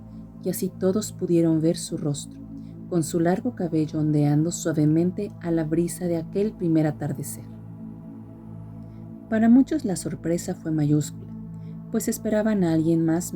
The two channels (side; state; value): both; identical; correlation 1.00